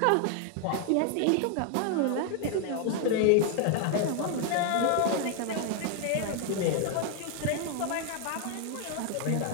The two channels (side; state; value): both; different; correlation 0.00